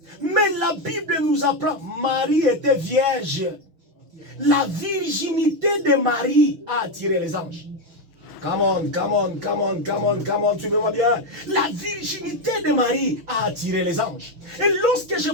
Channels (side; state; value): left; late; 6.3 ms